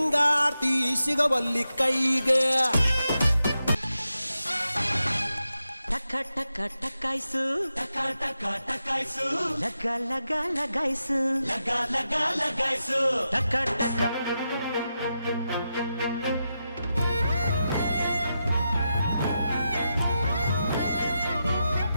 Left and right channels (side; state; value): both; inverted; correlation -0.88